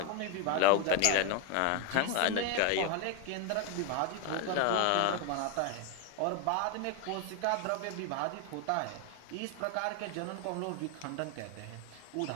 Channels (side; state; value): both; different; correlation 0.01